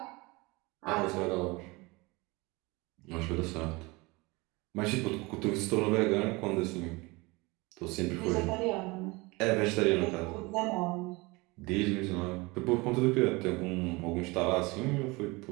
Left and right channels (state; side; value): quieter; left; 24.4 dB